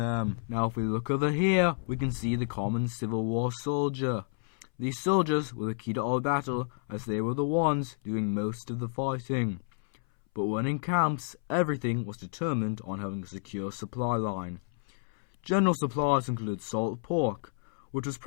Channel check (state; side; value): silent; right; 58 dB below the other